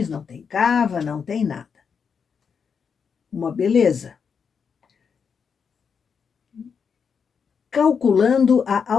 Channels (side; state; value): right; quieter; 6.3 dB